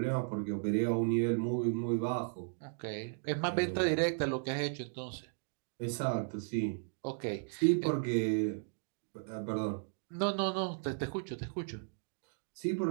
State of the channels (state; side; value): silent; left; digital silence